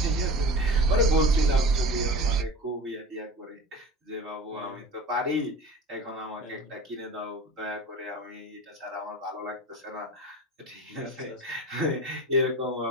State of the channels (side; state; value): both; normal; correlation 0.35